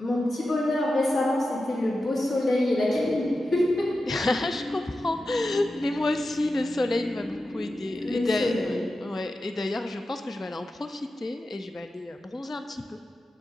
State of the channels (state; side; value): normal; both; correlation 0.91